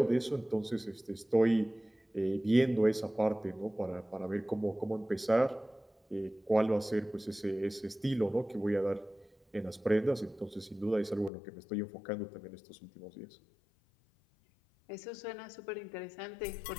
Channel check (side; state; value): right; drops out; at 11.3 s